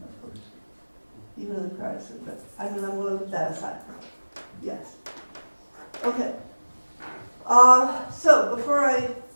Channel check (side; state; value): both; inverted; correlation -1.00